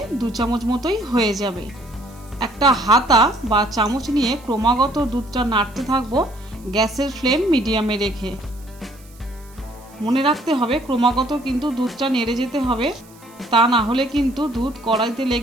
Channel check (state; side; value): noise; right; hiss, 26 dB below the sound